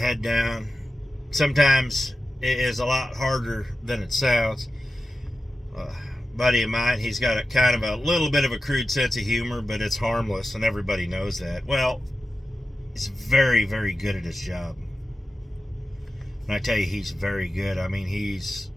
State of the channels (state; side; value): normal; both; correlation 0.93